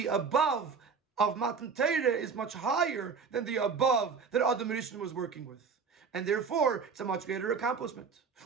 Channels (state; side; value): quieter; left; 5.6 dB